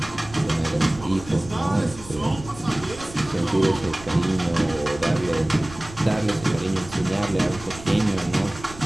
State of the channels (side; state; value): right; noise; rumble, 16 dB below the sound